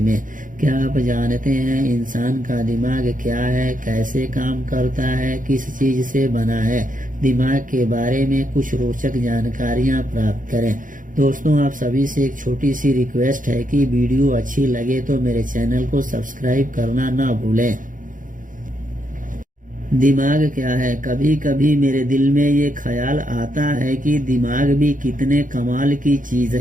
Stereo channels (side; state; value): left; late; 0.39 ms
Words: में। क्या आप जानते हैं इंसान का दिमाग क्या है, कैसे काम करता है, किस चीज से बना है? दिमाग के बारे में कुछ रोचक जानकारियां प्राप्त करें। दोस्तों, आप सभी से एक छोटी सी रिक्वेस्ट है कि वीडियो अच्छी लगे तो मेरे चैनल को सब्सक्राइब करना ना भूलें। दिमाग क्या है? कभी कभी मेरे दिल में ये ख्याल आता है कि दिमाग भी कितने कमाल की चीज